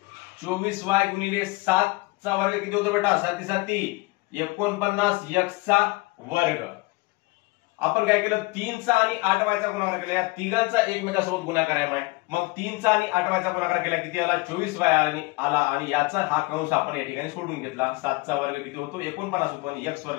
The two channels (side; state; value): right; quieter; 23.4 dB